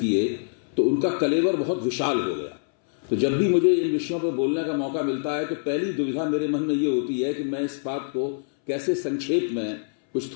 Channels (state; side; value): silent; right; 61 dB below the other